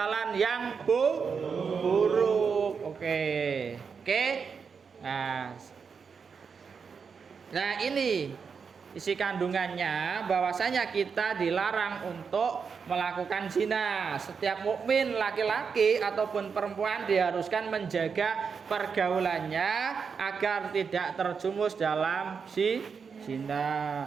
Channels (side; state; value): left; quieter; 5.9 dB